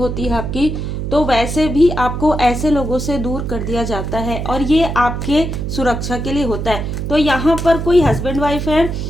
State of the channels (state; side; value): noise; right; hum, 4 dB below the sound